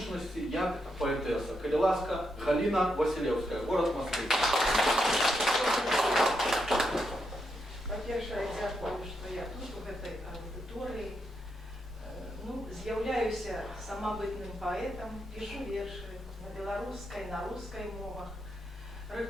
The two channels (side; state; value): both; normal; correlation 0.82